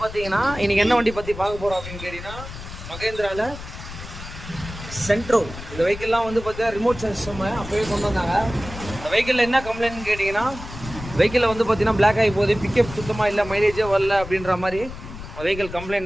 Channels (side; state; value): left; noise; rumble, 12 dB below the sound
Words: பார்த்தீங்கன்னா இன்றைக்கி என்ன வண்டி பற்றி பார்க்க போகிறோம் அப்படின்னு கேட்டிங்கன்னா மகேந்திராவில் சென்ட்ரோ. இந்த வெஹிக்கிள்லாம் வந்து பார்த்தீங்கன்னா ரிமோட் சிஸ்டம் அப்போவே கொண்டு வந்தாங்க. இந்த வெஹிக்கிளில் என்ன கம்ப்ளைண்ட்னு கேட்டிங்கன்னா வெஹிக்கிளில் வந்து பார்த்தீங்கன்னா பிளாக் ஆகி போகுது, பிக்கப் சுத்தமாக இல்லை, மைலேஜே வரல அப்படின்ற மாதிரி வெஹிக்கிள் கம்ப்ளைண்ட்